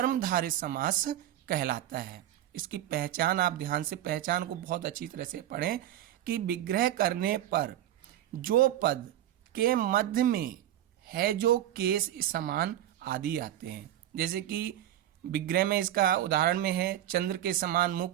समास कहलाता है। इसकी पहचान आप ध्यान से, पहचान को बहुत अच्छी तरह से पढ़ें कि विग्रह करने पर जो पद के मध्य में है जो केस समान आदि आते हैं। जैसे कि विग्रह में इसका उदाहरण में है चंद्र के समान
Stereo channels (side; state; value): left; quieter; 12.5 dB